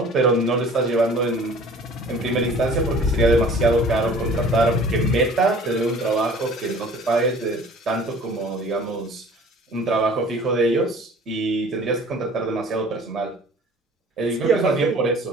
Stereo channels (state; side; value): normal; both; correlation 0.48